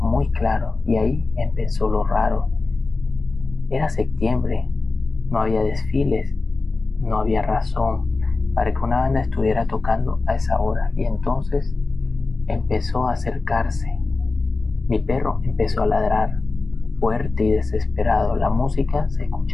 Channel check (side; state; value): right; quieter; 3.7 dB